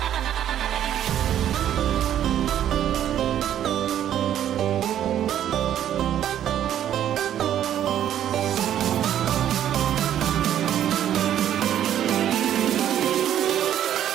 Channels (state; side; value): quieter; left; 10.8 dB